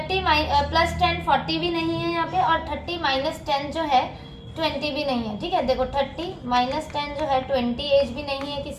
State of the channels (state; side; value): identical; both; correlation 1.00